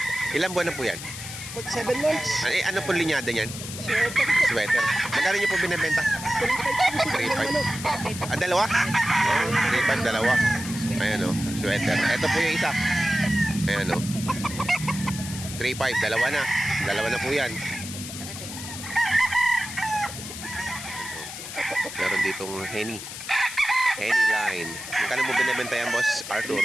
Ilang buwan na po yan? 7 months. Ay, ano po linyada niyan? Sweater. Sweater. Magkano niyo po binibenta? 3.5. Ah, dalawa? Oh, 3.5, dalawa. Ayan, oh. Sweater. Ito po yung isa. Ayan, oh. 3.5, dalawa na. Dalawa na po yan. Meron ditong Henny. Henny line. Magkano mo binibenta yan, boss Arthur?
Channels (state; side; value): noise; left; hiss, 10 dB below the sound